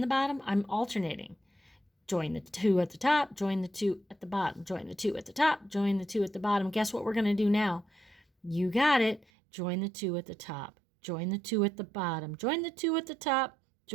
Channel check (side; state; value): left; drops out; at 9.2 s